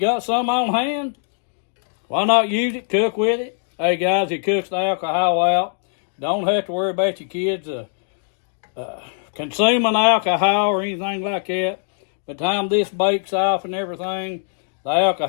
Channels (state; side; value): silent; right; digital silence